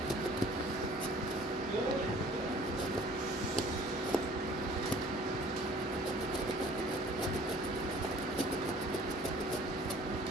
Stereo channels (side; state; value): both; normal; correlation 0.51